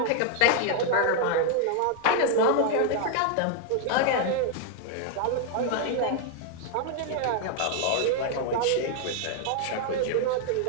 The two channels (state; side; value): different; both; correlation 0.00